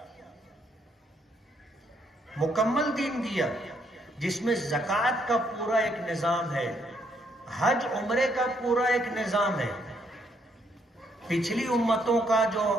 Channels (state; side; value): normal; both; correlation 0.72